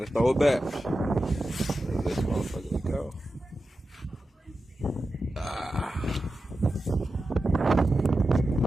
throw it back. Let this motherfucker go.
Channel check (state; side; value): normal; both; correlation 0.92